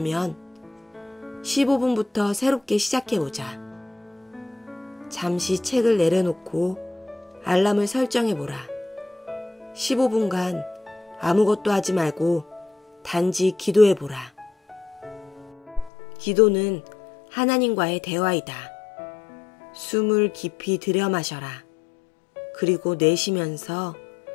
15분부터 새롭게 시작해보자. 잠시 책을 내려놓고 알람을 설정해보라. 15분간 아무것도 하지 말고 단지 기도해보라. 기도는 하나님과의 대화이다. 숨을 깊이 들여 마셔라. 그리고 내쉬면서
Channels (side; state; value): right; drops out; at 15.9 s